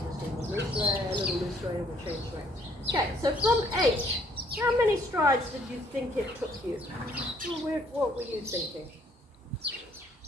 little loose rein, and we'll change rein. Okay, so from H, how many strides did you think it took you? What were you thinking?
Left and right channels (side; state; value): both; normal; correlation 0.64